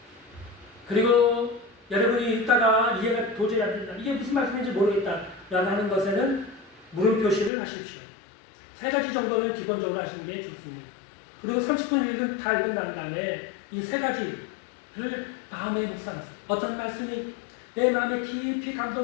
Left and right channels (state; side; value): drops out; right; at 7.5 s